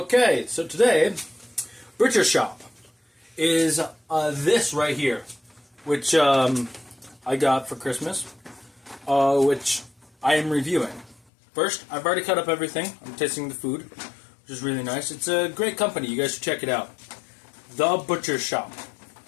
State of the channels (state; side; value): drops out; right; at 11.2 s